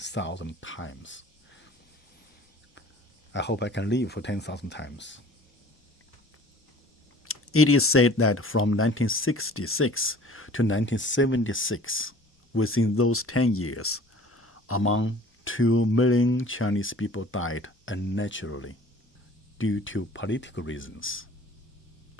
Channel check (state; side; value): normal; both; correlation 0.47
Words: times. I hope I can live for 10,000 times. It is said that from 1966 to 1976, within those 10 years, among 2 million Chinese people died unnaturally due to political reasons.